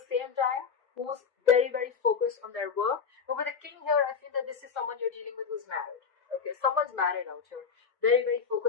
same time who's very, very focused on their work. But with the king here, I feel that this is someone you're dealing with who's married. Okay, someone's married out here, very, very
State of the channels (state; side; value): quieter; right; 6.0 dB